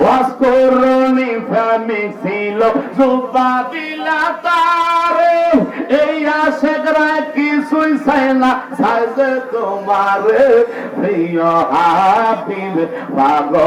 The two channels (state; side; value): identical; both; correlation 1.00